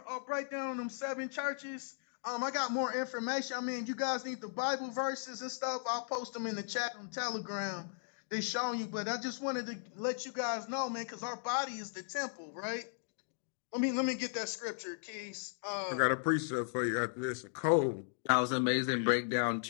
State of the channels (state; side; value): silent; right; digital silence